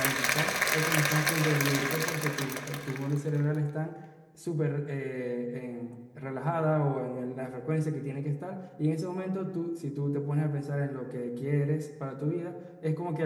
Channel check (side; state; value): both; identical; correlation 1.00